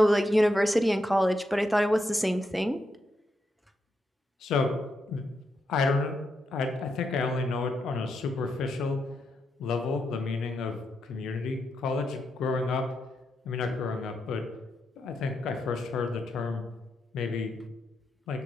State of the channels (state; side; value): normal; both; correlation 0.83